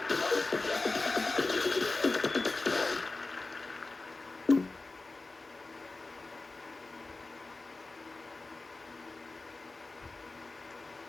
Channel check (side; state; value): right; quieter; 3.4 dB